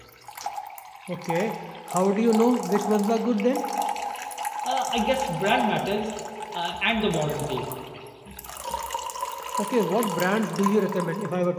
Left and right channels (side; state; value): both; identical; correlation 1.00